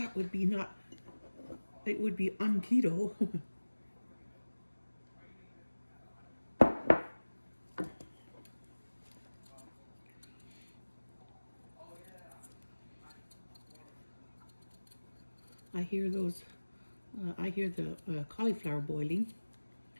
would be not, it would be un-keto. I hear those, I hear the cauliflower boiling.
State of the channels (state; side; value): inverted; both; correlation -1.00